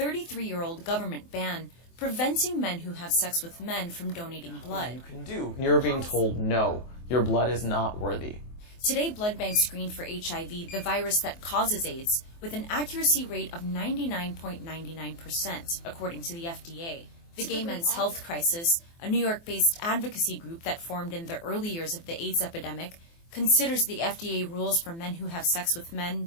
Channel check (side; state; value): right; late; 24 ms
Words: government ban preventing men who have sex with men from donating blood. You can do. You're being told no, your blood is not worthy. Today, blood banks screen for HIV, the virus that causes AIDS, with an accuracy rate of 99.99%, according to the FDA. The Gay Men's Health Crisis, a New York-based advocacy group that formed in the early years of the AIDS epidemic, considers the FDA rules for men who have sex with